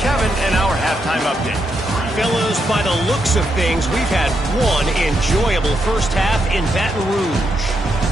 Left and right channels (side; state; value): both; normal; correlation 0.81